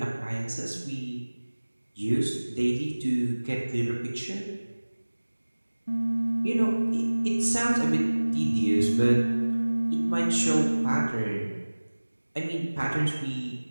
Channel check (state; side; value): inverted; both; correlation -1.00